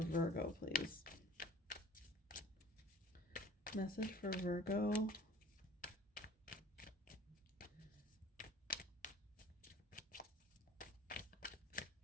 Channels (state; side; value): normal; both; correlation 0.48